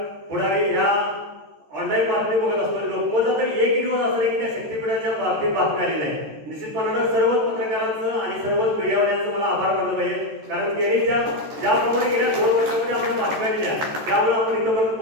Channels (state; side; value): late; left; 13 ms